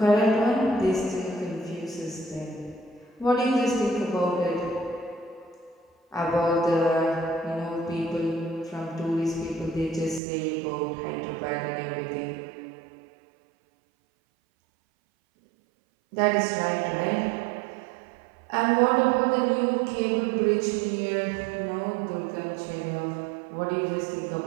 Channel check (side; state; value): left; drops out; at 10.2 s